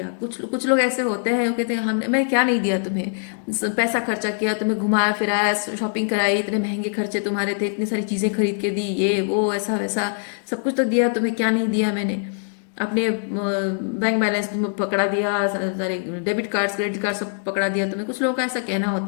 कुछ कुछ लोग ऐसे होते हैं, वो कहते हैं हमने, मैंने क्या नहीं दिया तुम्हें, पैसा खर्चा किया, तुम्हें घुमाया फिराया, शॉपिंग कराई, इतने महंगे खर्चे तुम्हारे थे, इतनी सारी चीज़ें खरीद के दी, ये वो ऐसा वैसा सब कुछ तो दिया तुम्हें, क्या नहीं दिया मैंने। अपने बैंक बैलेंस तुम्हें पकड़ा दिया, सारे डेबिट कार्ड्स, क्रेडिट कार्ड सब पकड़ा दिया तुम्हें। कुछ लोगों का ऐसा कहना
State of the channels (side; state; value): right; silent; digital silence